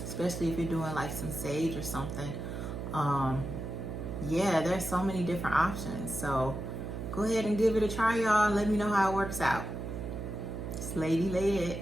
especially if you're doing like some sage or something. Yeah, there's so many different options. So go ahead and give it a try, y'all. Let me know how it works out. It's Lady Led,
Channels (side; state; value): right; noise; hum, 6 dB below the sound